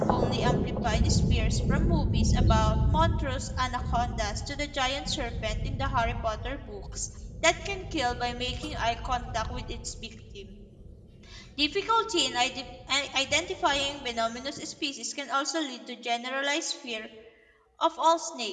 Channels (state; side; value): identical; both; correlation 1.00